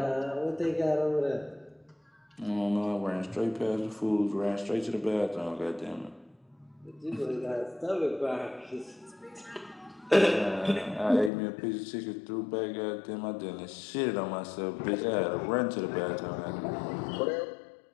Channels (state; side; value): drops out; right; at 11.3 s